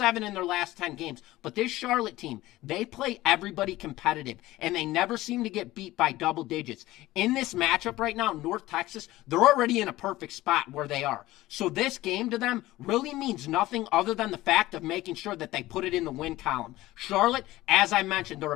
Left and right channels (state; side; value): quieter; right; 17.2 dB